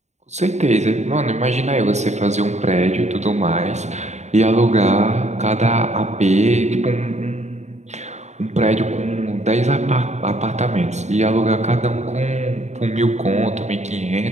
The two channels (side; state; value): left; late; 0.33 ms